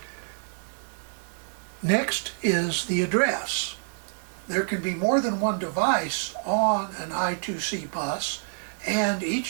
Next is the address. There can be more than one device on an I2C bus, and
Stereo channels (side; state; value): left; silent; digital silence